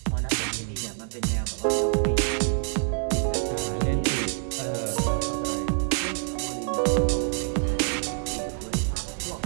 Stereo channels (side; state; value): left; silent; digital silence